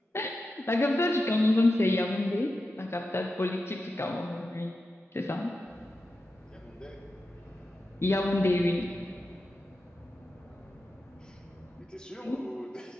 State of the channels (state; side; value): normal; both; correlation 0.90